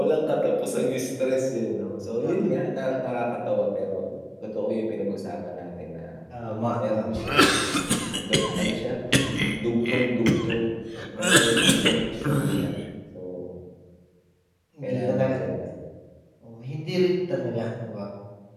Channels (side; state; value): both; identical; correlation 1.00